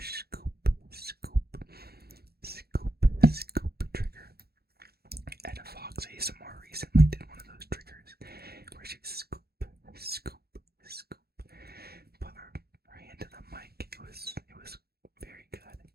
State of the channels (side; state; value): left; late; 0.46 ms